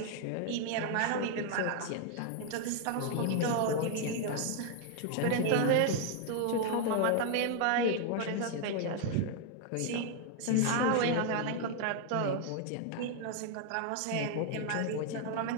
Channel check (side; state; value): both; different; correlation 0.00